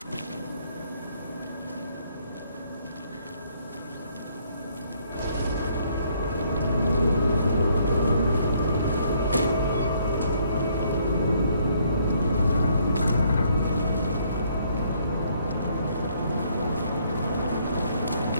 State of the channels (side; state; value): both; inverted; correlation -0.67